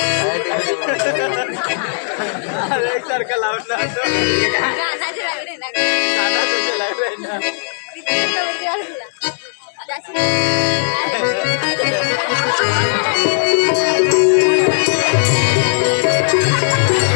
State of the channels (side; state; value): right; silent; digital silence